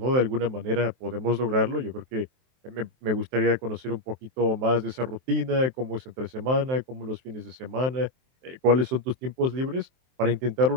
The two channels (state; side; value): late; left; 23 ms